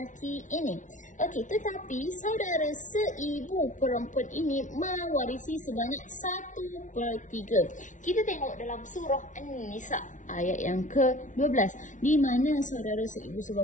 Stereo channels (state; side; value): late; right; 0.37 ms